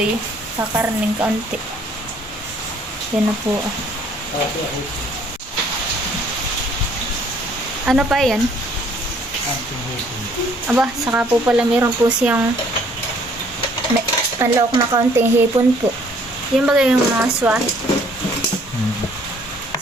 Kakarning kaunti. Yan na po. Ano pa yan? Aba, saka po pala meron po siyang panlawak na kaunting hipon po. Yung bagay yung mga swahe.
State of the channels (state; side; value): normal; both; correlation 0.61